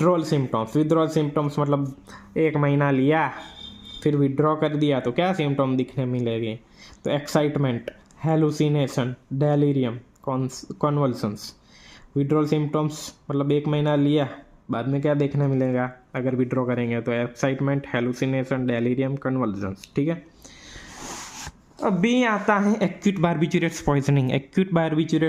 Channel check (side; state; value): both; identical; correlation 1.00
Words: सिम्टम्स मतलब 1 महीना लिया फिर विड्रॉ कर दिया तो क्या सिम्टम दिखने मिलेंगे? तो excitement, hallucination, delirium, convulsions. Withdrawal symptoms मतलब 1 महीना लिया, बाद में क्या देखने मिलेगा अगर विड्रॉ करेंगे? तो एक्साइटमेंट, हेलुसिनेशन, डेलीरियम, कन्वल्सन्स, ठीक है। अभी आता है एक्यूट बारबिचुरेट्स